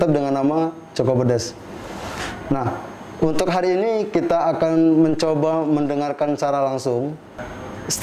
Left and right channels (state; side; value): identical; both; correlation 1.00